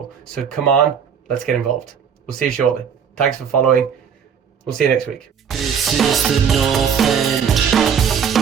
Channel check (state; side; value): quieter; left; 7.3 dB